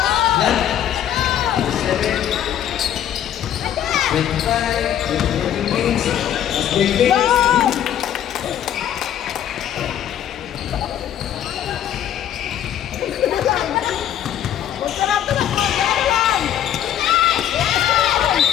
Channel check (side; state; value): right; quieter; 10.5 dB